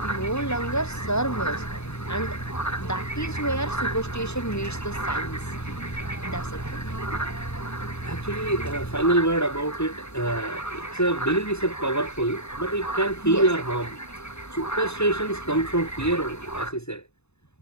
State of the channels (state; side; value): late; right; 0.80 ms